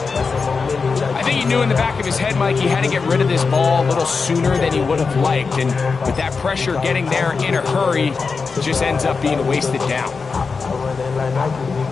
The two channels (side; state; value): right; quieter; 4.8 dB